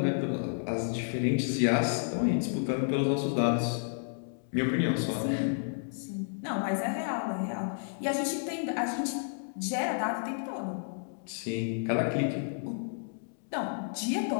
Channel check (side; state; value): right; silent; digital silence